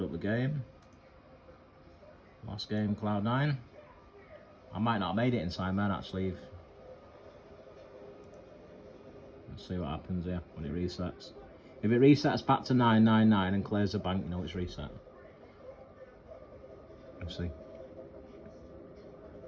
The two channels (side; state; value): both; identical; correlation 1.00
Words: up the game. Last game, Cloud9. I might not have made it inside, man, actually. Let's see what happens here when it resets. If it resets back to 999 and clears the bank, you know it's reset. Let's see. I